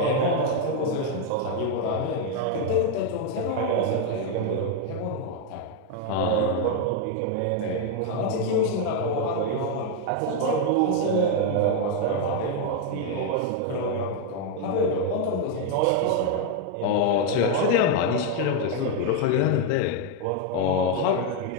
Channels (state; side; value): different; both; correlation 0.01